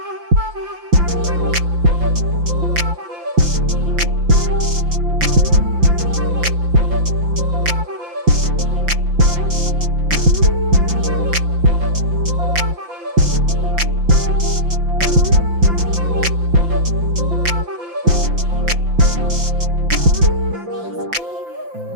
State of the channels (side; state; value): left; late; 5.8 ms